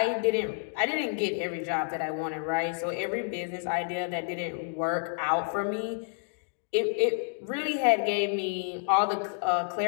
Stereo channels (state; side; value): silent; right; digital silence